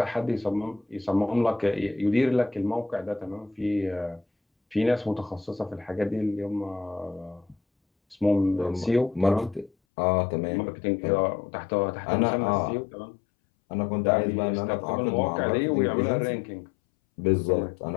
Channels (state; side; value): drops out; right; at 9.7 s